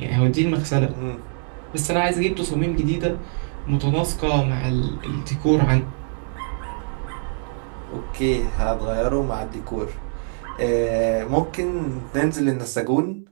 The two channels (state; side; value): silent; left; 63 dB below the other